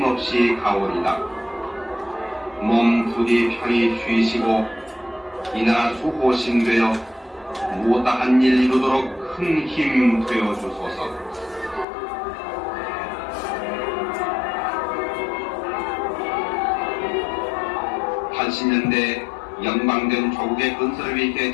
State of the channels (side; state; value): right; drops out; at 11.9 s